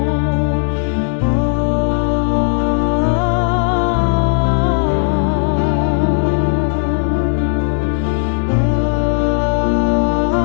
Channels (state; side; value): silent; right; digital silence